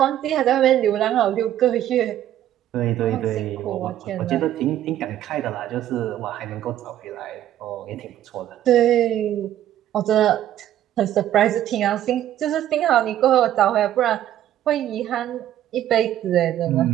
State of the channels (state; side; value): quieter; left; 12.0 dB